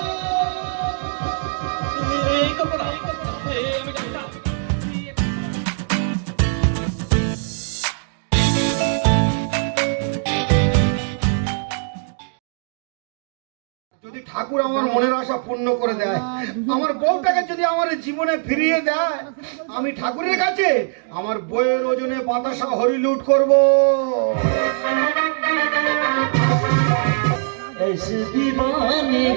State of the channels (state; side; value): silent; left; digital silence